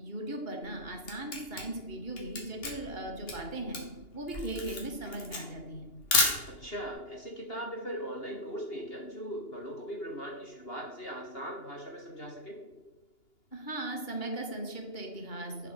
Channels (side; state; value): right; late; 2.8 ms